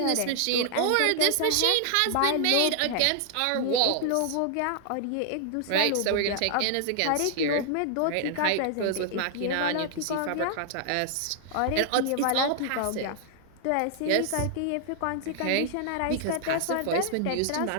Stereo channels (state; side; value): different; both; correlation 0.00